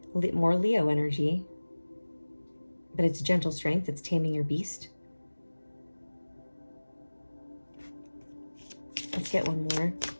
More Leo energy, but it's gentle strength. It's taming your beast. Let's get one more.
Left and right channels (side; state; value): both; inverted; correlation -1.00